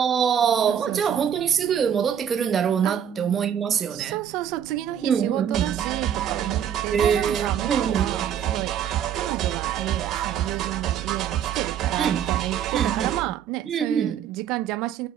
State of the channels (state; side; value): quieter; left; 9.0 dB